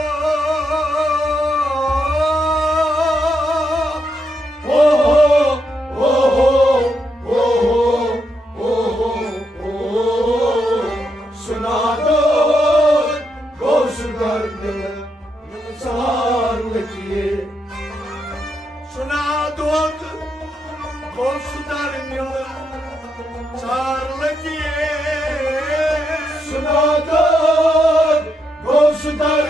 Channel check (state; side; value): normal; both; correlation 0.81